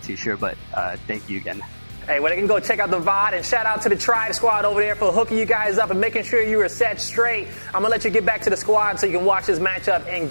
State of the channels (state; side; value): inverted; both; correlation -1.00